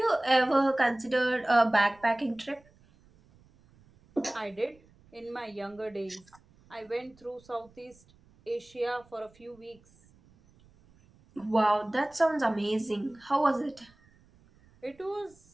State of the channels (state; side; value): noise; right; rumble, 29 dB below the sound